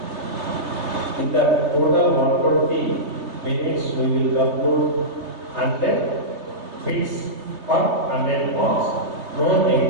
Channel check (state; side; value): late; left; 3.3 ms